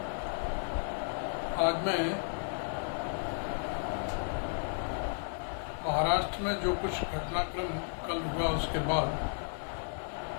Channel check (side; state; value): right; silent; 55 dB below the other